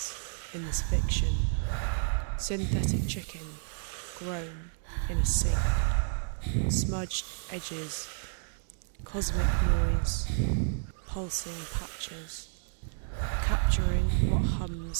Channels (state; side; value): silent; left; 57 dB below the other